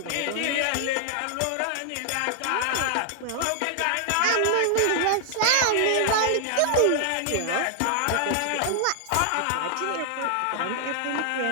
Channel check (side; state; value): both; different; correlation 0.00